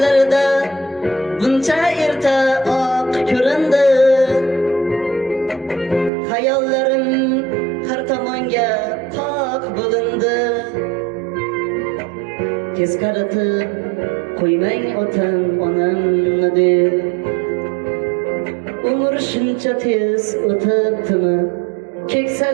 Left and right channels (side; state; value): left; drops out; at 6.1 s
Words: buncha erta oq ko'rindi. Hayollarim har tomonga qoq bo'lindi. Tez qaritib qo'ymang otam onamni deb. Umr shuncha tez o'tibdimi?